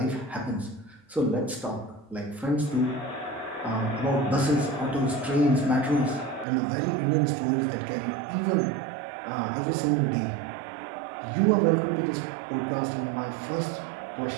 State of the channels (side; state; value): left; drops out; at 6.5 s